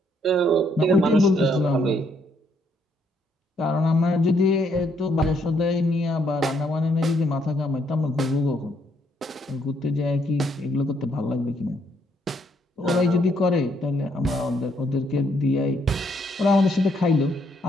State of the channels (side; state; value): both; normal; correlation 0.71